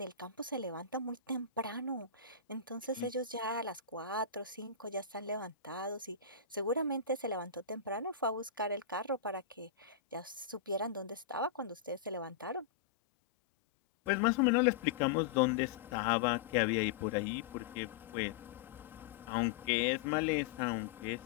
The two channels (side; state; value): right; quieter; 7.0 dB